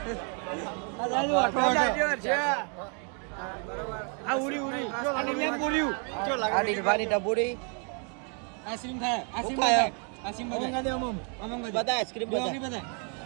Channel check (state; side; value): quieter; left; 39.4 dB